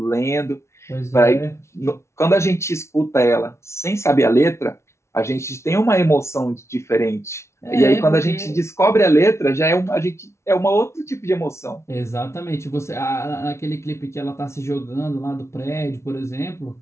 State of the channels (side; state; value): right; late; 0.13 ms